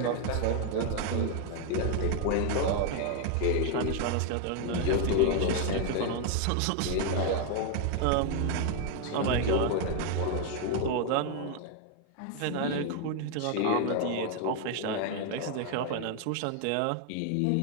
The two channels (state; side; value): different; both; correlation 0.01